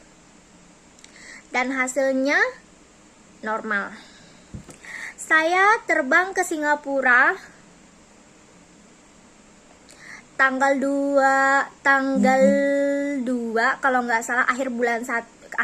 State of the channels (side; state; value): both; identical; correlation 1.00